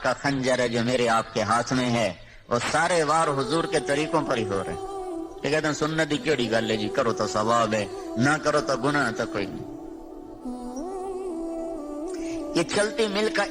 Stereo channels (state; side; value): identical; both; correlation 1.00